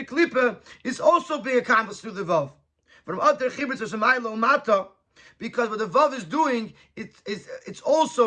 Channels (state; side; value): identical; both; correlation 1.00